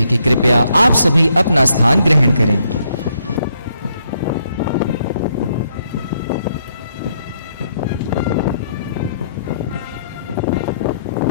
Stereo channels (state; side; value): inverted; both; correlation -0.73